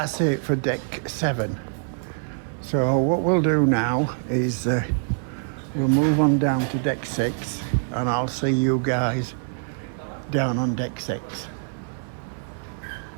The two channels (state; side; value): silent; left; 57 dB below the other